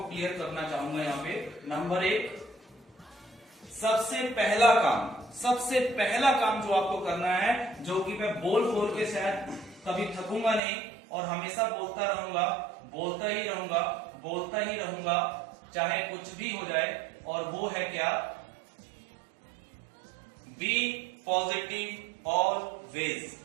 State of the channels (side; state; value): left; drops out; at 10.6 s